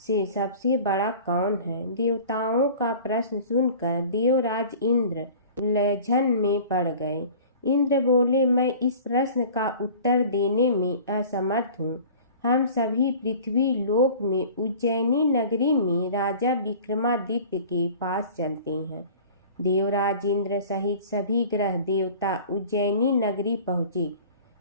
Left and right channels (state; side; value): inverted; both; correlation -0.43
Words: सबसे बड़ा कौन है। देवताओं का प्रश्न सुनकर देवराज इंद्र उलझन में पड़ गए। इंद्र बोले, मैं इस प्रश्न का उत्तर देने में असमर्थ हूँ। हम सभी पृथ्वी लोक में उज्जैनी नगरी में राजा विक्रमादित्य के पास चलते हैं। देवराज इंद्र सहित सभी ग्रह देवता उज्जैनी नगरी पहुँचे।